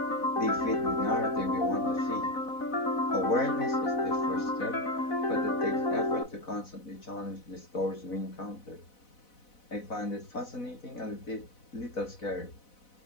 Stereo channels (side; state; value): right; late; 4.0 ms